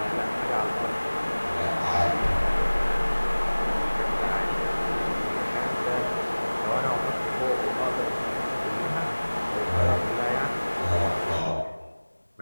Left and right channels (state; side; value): inverted; both; correlation -1.00